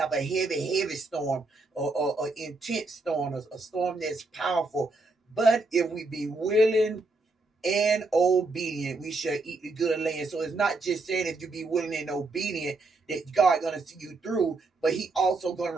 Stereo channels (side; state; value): left; quieter; 3.4 dB